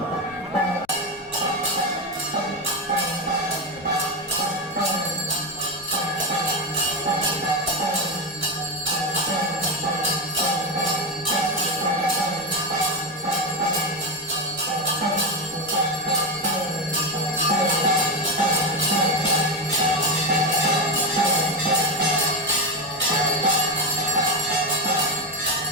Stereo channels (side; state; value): left; noise; rumble, 28 dB below the sound